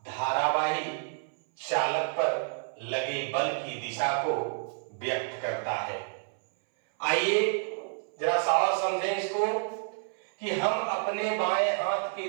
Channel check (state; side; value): silent; left; 58 dB below the other